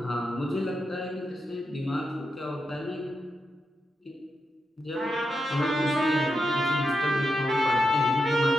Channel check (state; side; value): normal; both; correlation 0.86